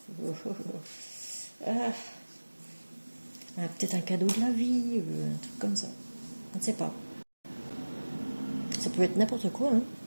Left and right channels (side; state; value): both; inverted; correlation -1.00